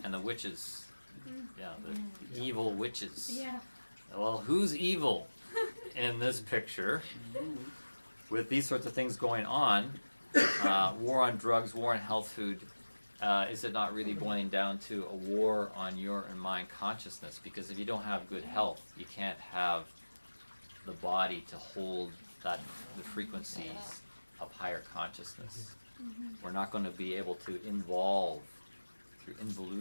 and the witches. Yeah, the evil witches. Yeah. Well, who's evil in this picture? With these sorts of things going on, war on drugs, war on health food, is it not really boiling down to a war on your and my consciousness? Because if you don't have good health, you can't have the body to hold the frequencies of higher consciousness. We're not going to be able to involve through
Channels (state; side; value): inverted; both; correlation -1.00